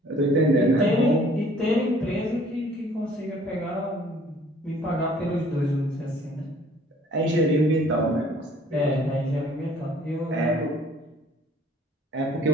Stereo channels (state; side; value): normal; both; correlation 0.56